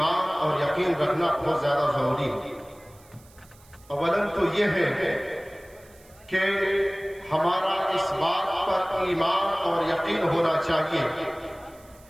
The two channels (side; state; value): right; noise; hiss, 27 dB below the sound